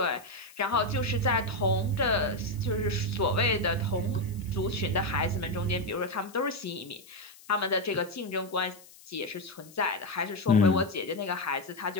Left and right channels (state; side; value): noise; left; hiss, 22 dB below the sound